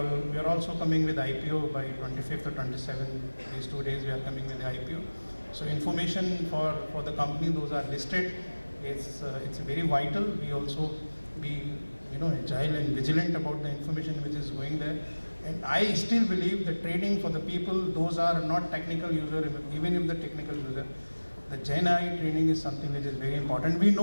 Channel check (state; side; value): inverted; both; correlation -1.00